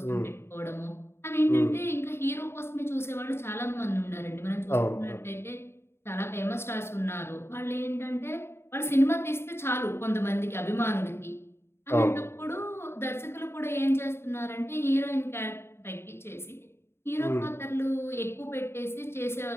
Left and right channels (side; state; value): right; late; 0.12 ms